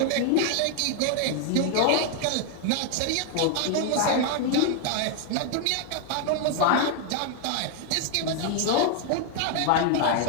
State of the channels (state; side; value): different; both; correlation 0.00